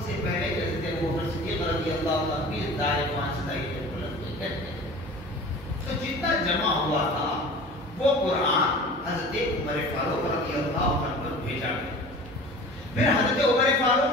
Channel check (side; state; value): both; normal; correlation 0.40